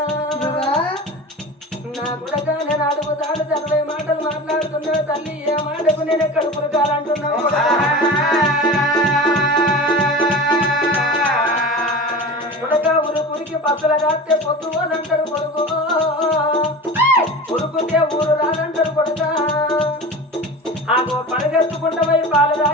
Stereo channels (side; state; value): both; normal; correlation 0.33